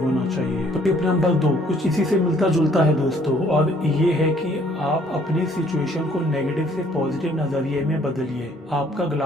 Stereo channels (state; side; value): normal; both; correlation 0.62